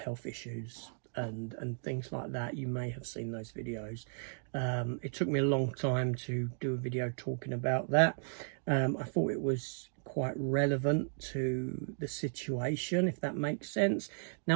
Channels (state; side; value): silent; left; digital silence